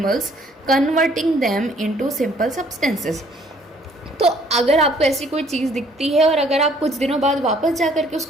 converting them into simple substances. तो अगर आपको ऐसी कोई चीज़ दिखती है और अगर आप कुछ दिनों बाद वापस जा कर के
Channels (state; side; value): normal; both; correlation 0.61